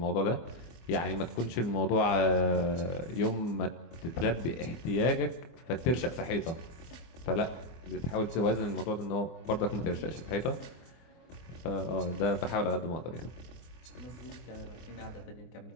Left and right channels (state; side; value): late; right; 24 ms